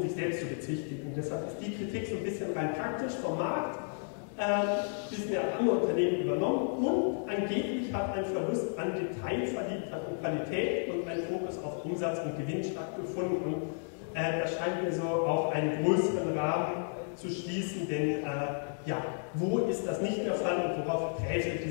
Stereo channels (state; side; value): silent; right; digital silence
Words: sich selbst zu bezichtigen. Deshalb ist die Kritik so ein bisschen rein praktisch vom Markt. Disney hat andere Unternehmen übernommen und angeblich hat ein Verlust an Detailverliebtheit und Qualität und ein Fokus auf Umsatz und Gewinn stattgefunden. Und das scheint mir so auf einen größeren Rahmen zu schließen, denn wo ist das nicht der Fall und worauf greift